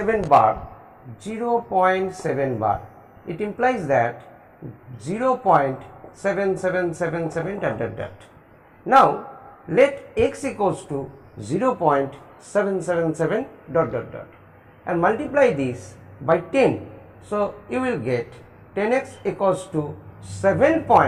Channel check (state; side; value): identical; both; correlation 1.00